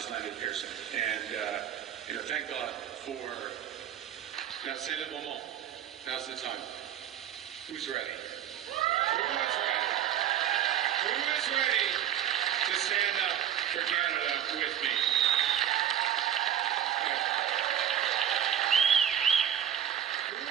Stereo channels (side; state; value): left; quieter; 10.0 dB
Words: landed Pearson. And, thank God for... Now, c'est le moment. Now's the time. Who's ready? Who is ready? Who is ready to stand up for Canada with me?